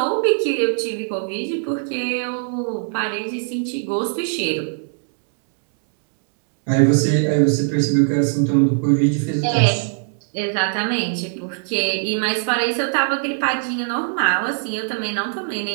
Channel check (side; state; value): left; silent; digital silence